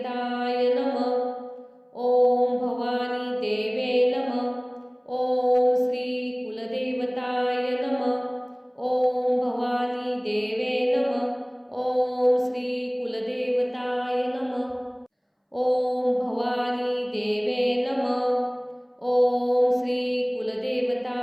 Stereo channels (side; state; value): both; identical; correlation 1.00